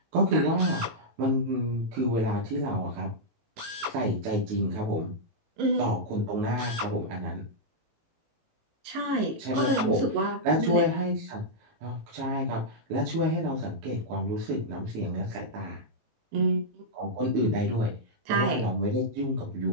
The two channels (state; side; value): late; left; 18 ms